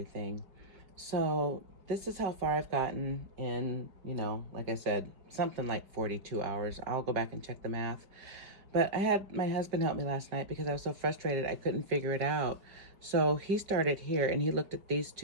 So this is how far I've gotten in, you know, like I said, something like 42 hours. I'll go back and check the math. But I had my husband help me last night because I was so frustrated I couldn't figure it out. So he started here and he looked at these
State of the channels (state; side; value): late; left; 5.3 ms